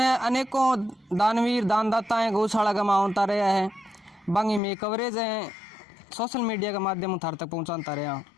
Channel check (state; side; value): drops out; right; at 4.6 s